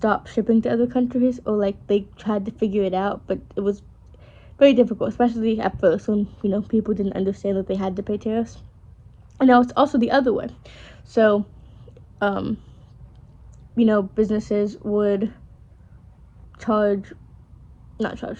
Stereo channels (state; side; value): identical; both; correlation 1.00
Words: shipping to other countries, or like they tried to figure it out, but it was very difficult, especially at first when people didn't understand that they had to pay tariffs. And now it's also the other way. So, um, businesses would charge, not charge,